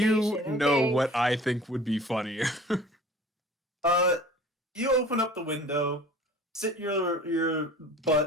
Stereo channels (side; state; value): both; normal; correlation 0.45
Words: you know okay? what I think would be funnier. You open up the window, sit your